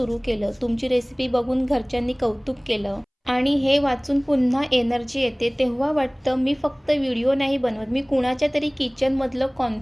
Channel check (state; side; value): identical; both; correlation 1.00